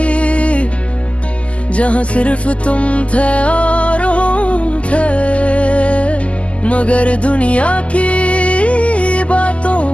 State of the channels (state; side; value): late; right; 0.061 ms